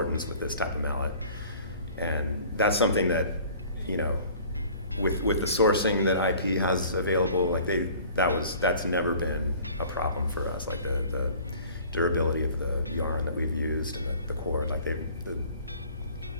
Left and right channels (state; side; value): inverted; both; correlation -0.49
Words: with this type of mallet. And that's something that, with the sourcing that IP has available, that's never been a problem for us. Like the durability of the yarn that we've used and the cord,